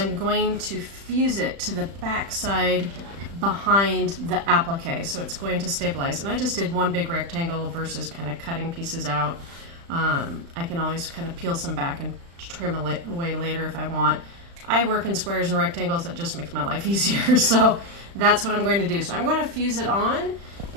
going to fuse it to the back side behind the applique. So it's going to stabilize. And I just did one big rectangle versus kind of cutting pieces out. I can always kind of peel some back and trim away later if I want. I work in squares and rectangles. That just makes my life easier. So that's what I'm going to do. So I'm going to fuse it on,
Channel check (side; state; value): left; late; 35 ms